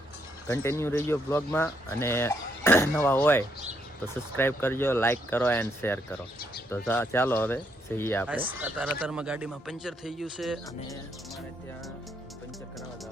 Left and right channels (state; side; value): normal; both; correlation 0.75